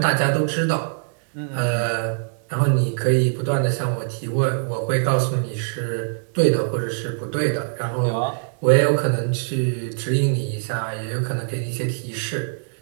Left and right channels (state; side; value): silent; left; digital silence